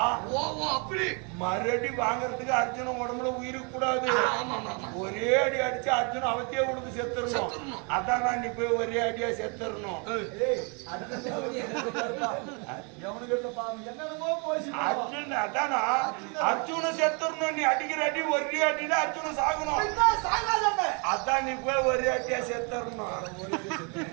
ஓ அப்படி மறுபடி வாங்குறதுக்கு அர்ஜுனன் உடம்புல உயிருக்கு கூடாது ஆமா ஆமா ஒரே அடி அடிச்சு அர்ஜுன் அவத்தையே கொடுத்து செத்துடணும் அதான் நீ போய் ஒரே அடியா செத்துடணும் ஏய் எவனுக்கு இல்லப்பா என்னென்னமோ போய் அர்ஜுன் அதானா அர்ஜுன செத்துடணும் நீ அடிக்கிற அடி ஒரே அடியில அர்ஜுன சாகணும் சாகாதே அதான் நீ போய் ஒரே அடியா செத்துடணும்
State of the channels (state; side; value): quieter; left; 34.9 dB